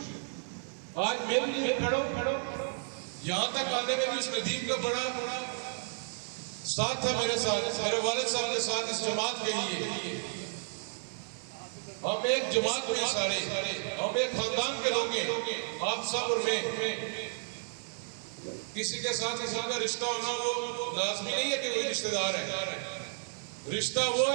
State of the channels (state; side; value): silent; left; digital silence